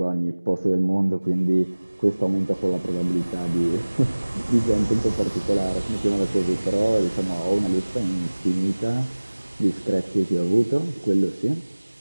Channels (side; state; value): both; inverted; correlation -1.00